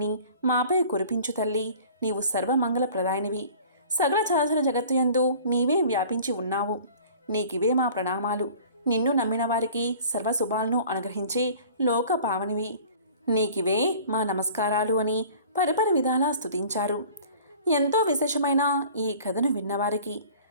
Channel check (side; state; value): both; inverted; correlation -0.47